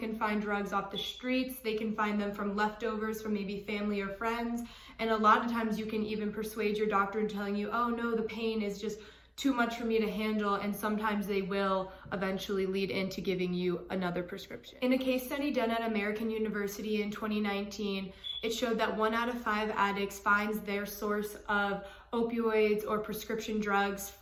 find drugs off the streets. They can find them from leftovers from maybe family or friends. And a lot of times you can even persuade your doctor in telling you, oh no, the pain is just too much for me to handle, and sometimes they will eventually lead into giving you another prescription. In a case study done at American University in 2019, it showed that 1 out of 5 addicts finds their source of opioids or prescription drugs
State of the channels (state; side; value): identical; both; correlation 1.00